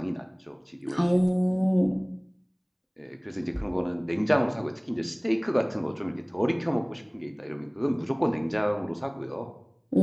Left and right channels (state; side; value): identical; both; correlation 1.00